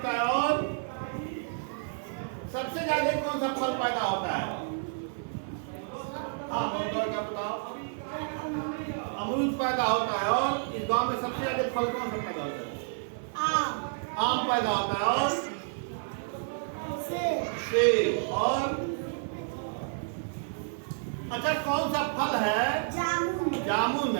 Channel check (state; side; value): silent; left; 55 dB below the other